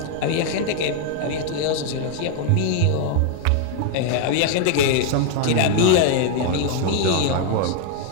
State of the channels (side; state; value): both; different; correlation 0.00